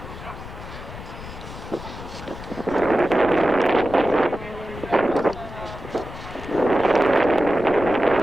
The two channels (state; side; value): noise; left; rumble, 13 dB below the sound